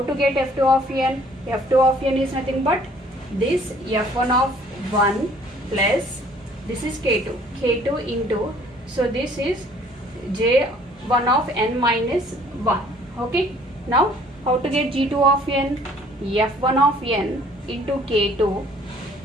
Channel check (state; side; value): normal; both; correlation 0.57